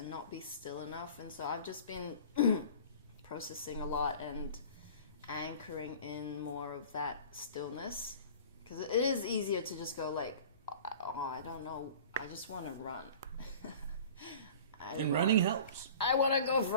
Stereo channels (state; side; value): inverted; both; correlation -0.43